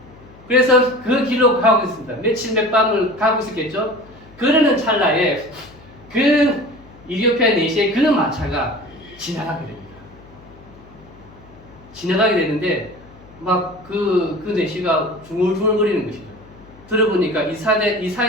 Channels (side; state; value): left; noise; hum, 23 dB below the sound